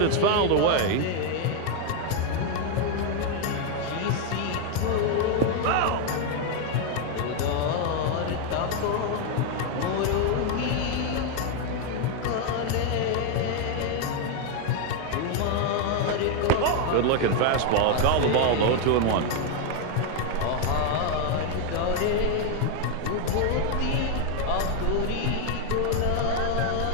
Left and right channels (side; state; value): both; different; correlation 0.01